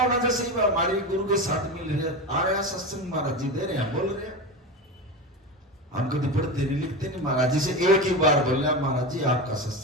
जैसे ही हमारे गुरु के साथ मिल रहे आ रहे सत्संग महाराज जी दे रहे हैं, बोल रहे हैं, हम कभी पढ़ते नहीं लिखते नहीं। महाराज जी से एक ही बार बोल रहे महाराज जी आपका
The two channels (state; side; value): normal; both; correlation 0.22